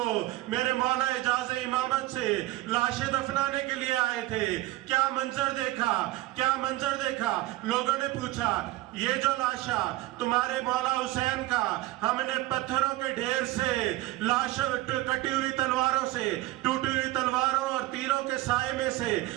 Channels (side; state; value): left; quieter; 17.4 dB